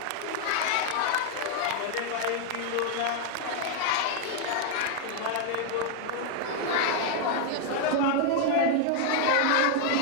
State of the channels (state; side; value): different; both; correlation 0.00